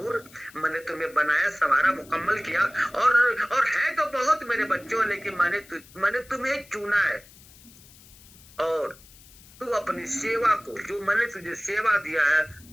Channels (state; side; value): noise; left; hiss, 23 dB below the sound